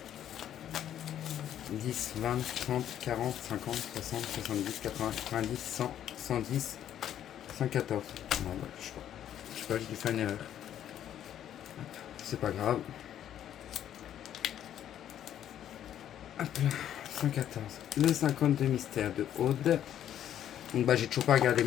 10, 20, 30, 40, 50, 60, 70, 80, 90, 100, 110, 114. Ouais, je sais pas. Je sais pas, j'ai dû faire une erreur. C'est pas grave. Hop là, 114. Le 52 mystère de Aude. Donc bah j'ai toujours pas regardé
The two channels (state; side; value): quieter; right; 10.7 dB